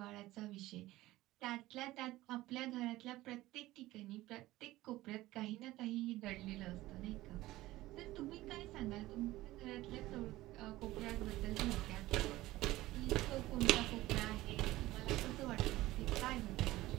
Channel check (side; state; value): left; quieter; 17.3 dB